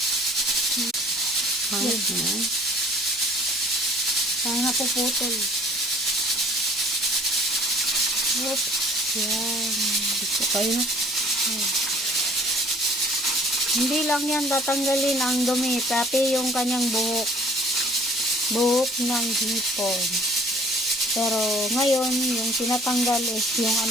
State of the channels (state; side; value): normal; both; correlation 0.54